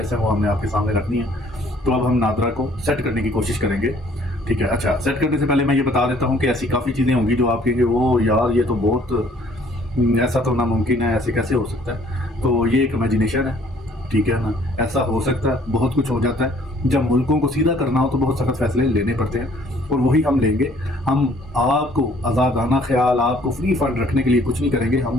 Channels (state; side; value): normal; both; correlation 0.60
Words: ہیں وہ ہم نے آپ کے سامنے رکھنی ہیں. تو اب ہم نادرا کو سیٹ کرنے کی کوشش کریں گے. ٹھیک ہے. اچھا, سیٹ کرنے سے پہلے میں یہ بتا دیتا ہوں کہ ایسی کافی چیزیں ہوں گی جو آپ کہیں گے وہ یار یہ تو بہت ایسا تو ناممکن ہے, ایسے کیسے ہو سکتا ہے. تو یہ ایک امیجنیشن ہے. ٹھیک ہے نا, ایسا ہو سکتا ہے, بہت کچھ ہو جاتا ہے. جب ملکوں کو سیدھا کرنا ہو تو بہت سخت فیصلے لینے پڑتے ہیں, اور وہی ہم لیں گے. ہم آپ کو آزادانہ خیال, آپ کو فری فنڈ رکھنے کے لیے کچھ نہیں کریں گے.